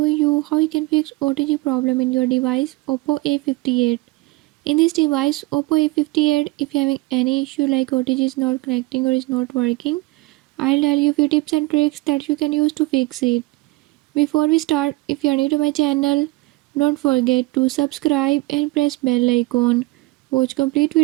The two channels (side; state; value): left; quieter; 21.3 dB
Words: you how you can fix OTG problem in your device Oppo A58. In this device Oppo A58, if you're having any issue like OTG is not connecting or is not working, I'll tell you a few tips and tricks that you can use to fix it. Before we start, if you are new to my channel, don't forget to subscribe and press bell icon. Watch complete